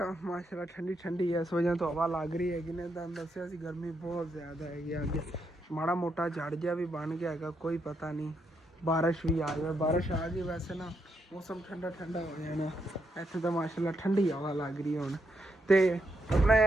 ਮਾਸ਼ਾਅੱਲਾ ਠੰਡੀ ਇਸ ਵਜ੍ਹਾ ਤੋਂ ਹਵਾ ਲੱਗ ਰਹੀ ਹੈਗੀ ਨੇ। ਤੁਹਾਨੂੰ ਦੱਸਿਆ ਸੀ ਗਰਮੀ ਬਹੁਤ ਜ਼ਿਆਦਾ ਹੈਗੀ ਅੱਗੇ, ਮਾੜਾ ਮੋਟਾ ਝੜ ਜਿਹਾ ਵੀ ਬਣ ਗਿਆ ਹੈਗਾ, ਕੋਈ ਪਤਾ ਨਹੀਂ ਬਾਰਿਸ਼ ਵੀ ਆ ਜਾਵੇ। ਬਾਰਿਸ਼ ਆ ਗਈ ਵੈਸੇ ਨਾ ਮੌਸਮ ਠੰਡਾ ਹੋ ਜਾਣਾ ਇੱਥੇ ਤਾਂ, ਮਾਸ਼ਾਅੱਲਾ ਠੰਡੀ ਹਵਾ ਲੱਗ ਰਹੀ ਹੁਣ। ਤੇ ਆਪਣਾ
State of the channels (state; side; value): normal; both; correlation 0.79